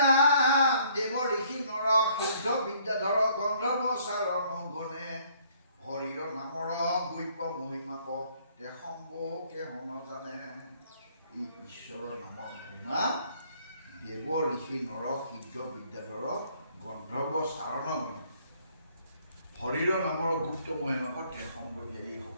দেৱ ঋষি নৰ সিদ্ধ বিদ্যাধৰ গন্ধৰ্ব চাৰণ গণে হৰিৰ নামৰ বৈপ্য মহিমাক তে সম্ভকে হন জানে। এই ঈশ্বৰৰ নামৰ মহিমা দেৱ ঋষি নৰ সিদ্ধ বিদ্যাধৰ গন্ধৰ্ব চাৰণ গণে হৰিৰ নামৰ গুপ্ত মহিমাক তে সম্ভকে,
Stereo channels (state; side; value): inverted; both; correlation -0.62